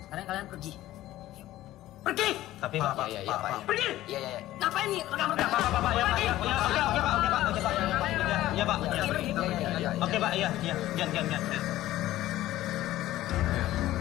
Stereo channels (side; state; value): right; quieter; 15.0 dB